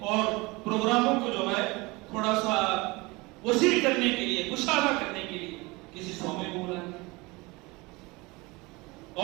اور پروگراموں کو جو ہے تھوڑا سا وسیع کرنے کے لیے، کشادہ کرنے کے لیے کسی سومے کو بلا دیا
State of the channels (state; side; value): quieter; left; 24.1 dB